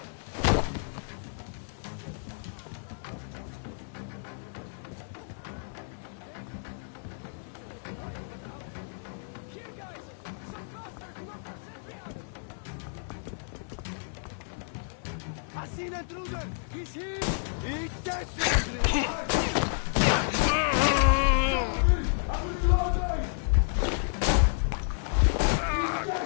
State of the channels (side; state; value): right; silent; 58 dB below the other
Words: I seen an intruder! He's here! Eat this!